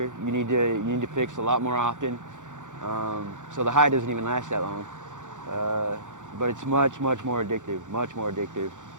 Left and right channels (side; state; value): left; late; 0.86 ms